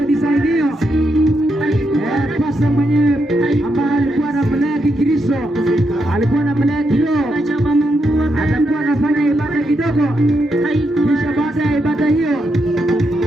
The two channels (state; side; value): normal; both; correlation 0.82